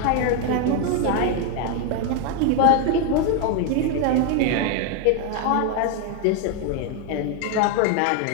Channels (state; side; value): different; both; correlation 0.01